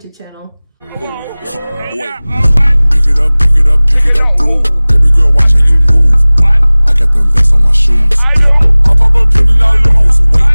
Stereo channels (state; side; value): inverted; both; correlation -1.00